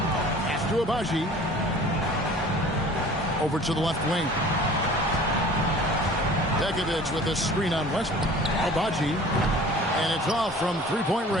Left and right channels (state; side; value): normal; both; correlation 0.46